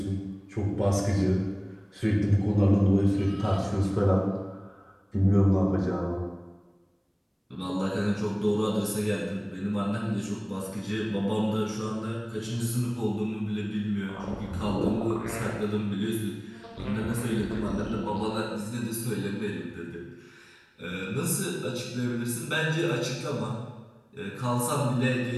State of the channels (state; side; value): identical; both; correlation 1.00